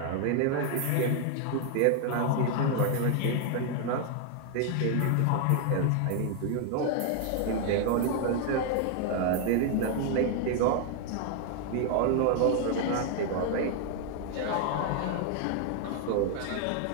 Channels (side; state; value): both; different; correlation 0.00